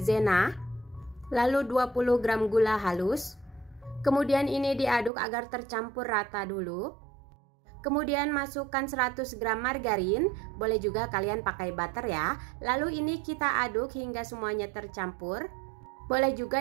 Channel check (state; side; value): drops out; left; at 5.1 s